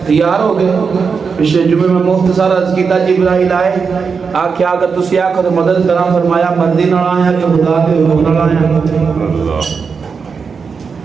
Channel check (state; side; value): quieter; left; 5.5 dB